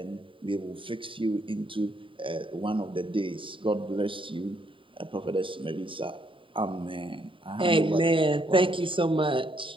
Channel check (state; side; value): late; left; 0.25 ms